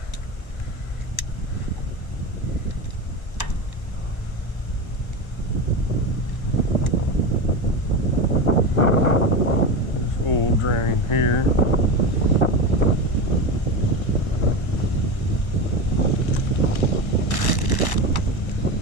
Oil drain here.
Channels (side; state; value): right; late; 1.2 ms